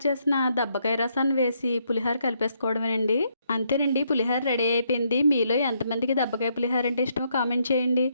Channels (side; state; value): both; inverted; correlation -0.74